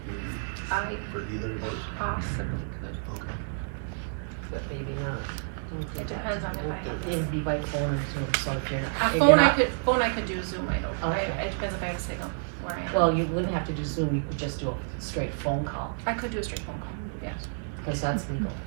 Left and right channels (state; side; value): silent; left; digital silence